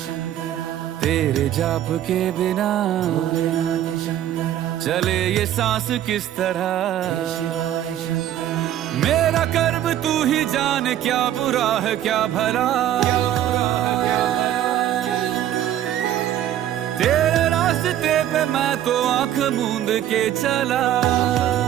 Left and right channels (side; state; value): left; quieter; 11.6 dB